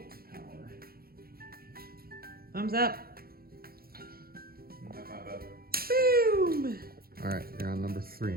power. Thumbs up. High five up. Boom! All right, you're on number 3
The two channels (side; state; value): left; late; 0.44 ms